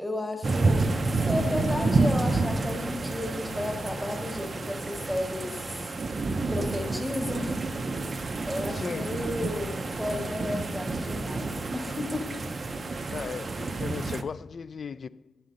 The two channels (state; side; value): normal; both; correlation 0.90